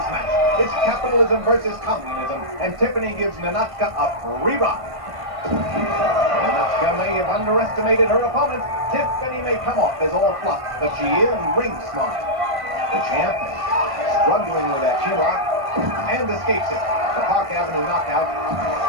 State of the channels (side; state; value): left; late; 1.5 ms